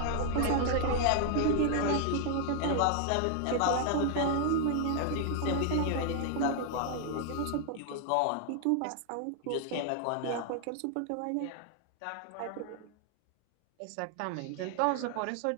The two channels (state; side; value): different; both; correlation 0.00